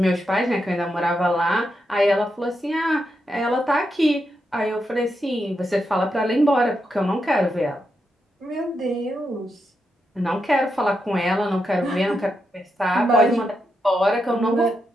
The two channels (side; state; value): both; normal; correlation 0.84